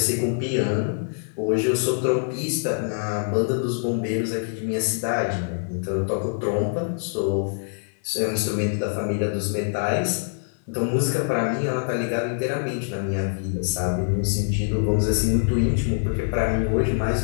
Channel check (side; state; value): right; silent; digital silence